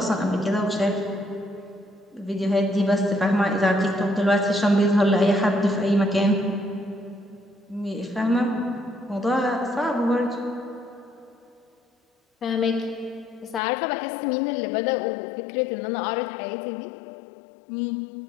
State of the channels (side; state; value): right; drops out; at 13.6 s